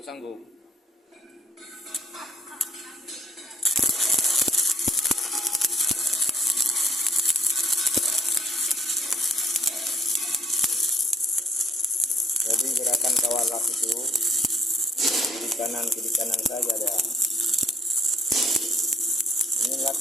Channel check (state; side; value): normal; both; correlation 0.62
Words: sanggup. Jadi gerakan kawat las itu kiri kanan saja ada. Ini